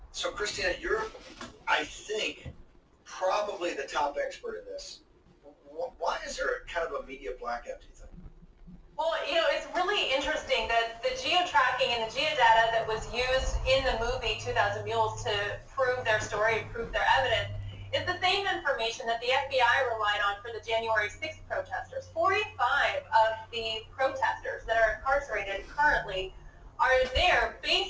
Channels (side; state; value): both; identical; correlation 1.00